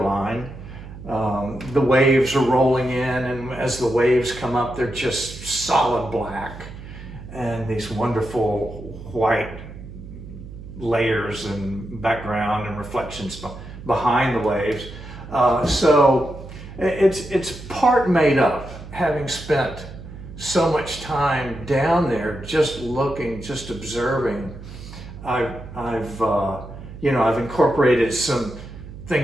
The waves are rolling in, and as the waves come up, they're just solid black, and these wonderful white layers and background and reflections behind the waves. So it's part made up, having spent so much time down there, just looking, just observing. I've incorporated some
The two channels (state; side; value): noise; right; hum, 14 dB below the sound